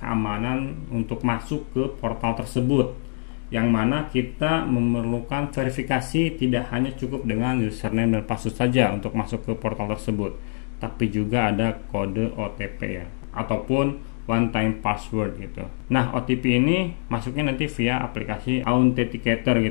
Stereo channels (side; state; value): right; silent; digital silence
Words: untuk masuk ke portal tersebut, yang mana kita memerlukan verifikasi tidak hanya cukup dengan username dan password saja untuk masuk ke portal tersebut, tapi juga ada kode OTP ya, ataupun one time password gitu. Nah, OTP ini masuknya nanti via aplikasi Authenticator